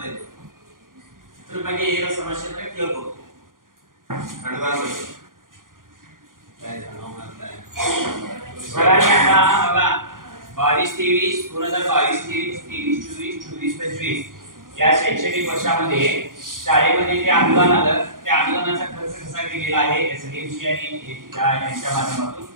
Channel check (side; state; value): left; late; 0.90 ms